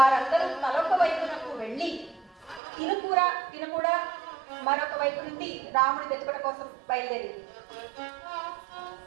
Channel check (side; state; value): left; drops out; at 2.6 s